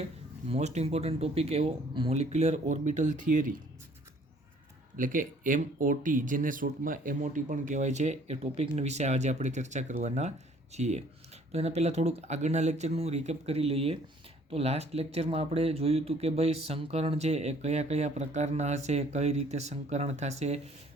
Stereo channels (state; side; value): normal; both; correlation 0.58